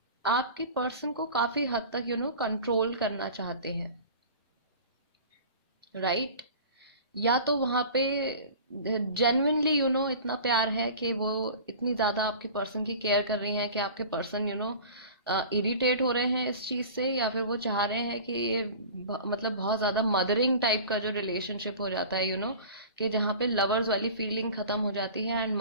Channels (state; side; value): inverted; both; correlation -0.39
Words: आपके पर्सन को काफ़ी हद तक कंट्रोल करना चाहते हैं, राइट? या तो वहाँ पे जेन्युइनली इतना प्यार है कि वो इतनी ज़्यादा आपके पर्सन की केयर कर रही हैं कि आपके पर्सन इरिटेट हो रहे हैं इस चीज़ से, या फिर वो चाह रहे हैं कि ये मतलब बहुत ज़्यादा मदरिंग टाइप का जो रिलेशनशिप हो जाता है कि जहाँ पे लवर्स वाली फीलिंग ख़त्म हो जाती है एंड